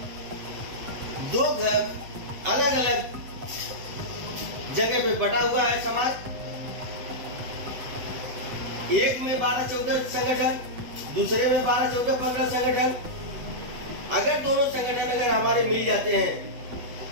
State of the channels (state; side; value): late; left; 7.9 ms